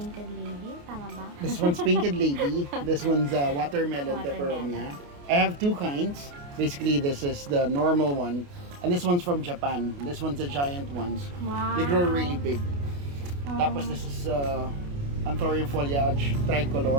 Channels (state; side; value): late; left; 28 ms